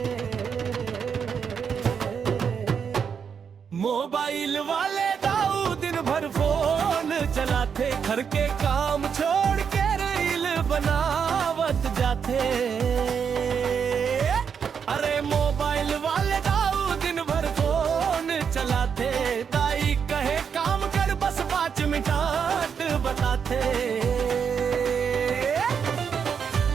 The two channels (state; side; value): quieter; left; 6.9 dB